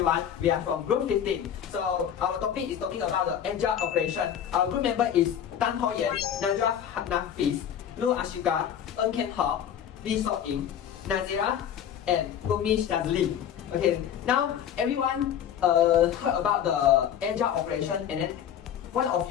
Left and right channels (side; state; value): right; quieter; 9.3 dB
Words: we are from group 15. So our topic is talking about the agile operation. Our group member is TANG, NAJWA, NAFIS, ASYIQAH, HOCK, Yeen, NAZIERAH, and SHAZLEEN. Okay, now everyone heard about the agile operation, and then one of